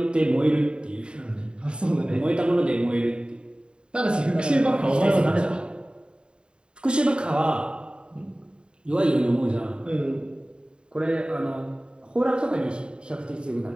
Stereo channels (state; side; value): late; left; 0.051 ms